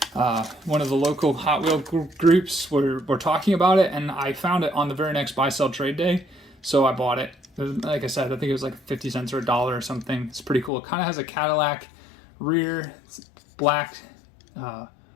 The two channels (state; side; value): drops out; right; at 10.7 s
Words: One of the local Hot Wheel groups were talking about it, and I found it on the very next buy sell trade day, so I bought it. Like I said, I think it was like 50 cents or $1 or something. It's pretty cool. It kind of has a Cadillac rear, black